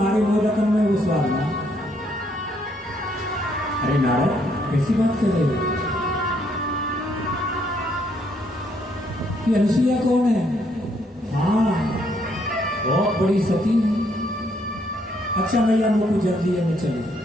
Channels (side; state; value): both; normal; correlation 0.71